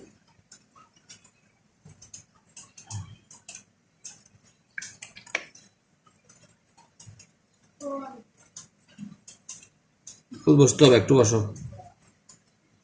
বসতে হবে, একটু বসো।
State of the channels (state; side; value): identical; both; correlation 1.00